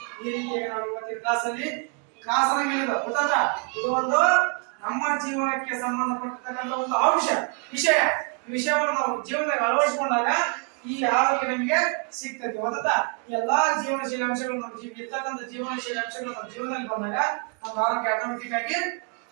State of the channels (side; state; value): left; quieter; 36.4 dB